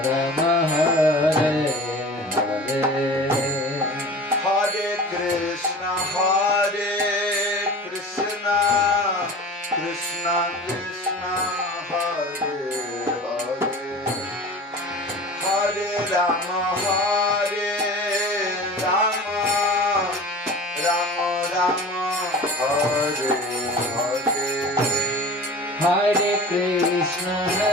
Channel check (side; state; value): both; normal; correlation 0.38